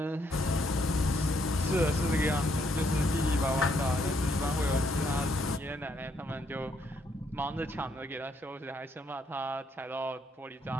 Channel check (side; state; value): both; normal; correlation 0.72